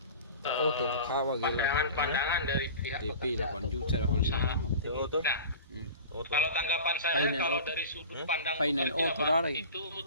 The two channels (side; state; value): both; inverted; correlation -0.37